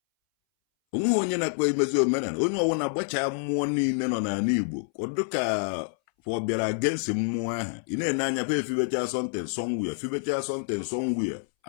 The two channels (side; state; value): right; silent; 60 dB below the other